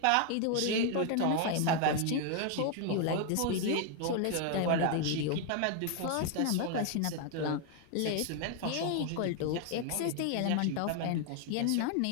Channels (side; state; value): both; different; correlation 0.01